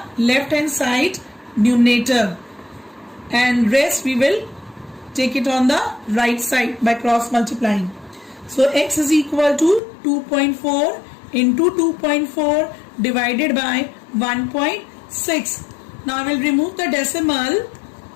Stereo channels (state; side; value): drops out; right; at 9.8 s